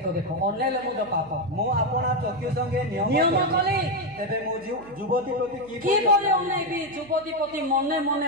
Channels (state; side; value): noise; right; hum, 24 dB below the sound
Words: ଦେଖ, ଅନେଇଲେ ମଧ୍ୟ ପାପ। ମୁଁ ଆପଣା ଚକ୍ଷୁ ସଙ୍ଗେ ନିୟମ କଲି, ତେବେ ମୁଁ ଯୁବତୀ ପ୍ରତି କିପରି ଅନେଇବି? ଯୁବତୀ ପ୍ରତି ମନେ